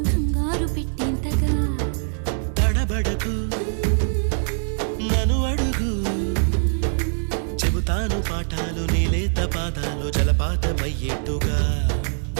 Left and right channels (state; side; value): silent; left; digital silence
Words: కంగారు పెట్టేంతగా తడబడకు నన్ను అడుగు చెబుతాను పాఠాలు నీలేత పాదాలు జలపాతమయ్యేట్టుగా